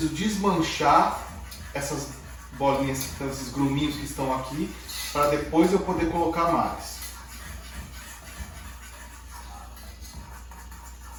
desmanchar essas bolinhas, esses gruminhos que estão aqui, para depois eu poder colocar mais.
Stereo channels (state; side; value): identical; both; correlation 1.00